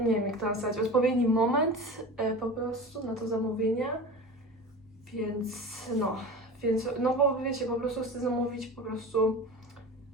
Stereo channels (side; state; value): both; normal; correlation 0.32